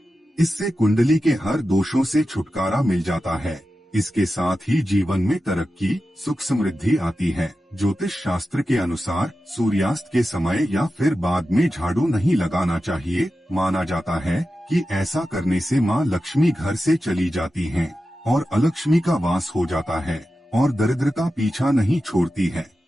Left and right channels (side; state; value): both; normal; correlation 0.92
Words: इससे कुंडली के हर दोषों से छुटकारा मिल जाता है। इसके साथ ही जीवन में तरक्की, सुख समृद्धि आती है। ज्योतिष शास्त्र के अनुसार सूर्यास्त के समय या फिर बाद में झाड़ू नहीं लगाना चाहिए। माना जाता है कि ऐसा करने से मां लक्ष्मी घर से चली जाती हैं और अलक्ष्मी का वास हो जाता है और दरिद्रता पीछा नहीं छोड़ती है।